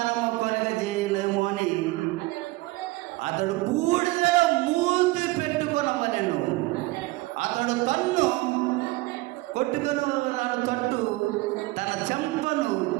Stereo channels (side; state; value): left; quieter; 20.6 dB